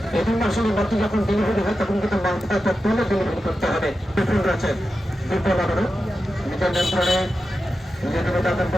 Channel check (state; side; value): normal; both; correlation 0.91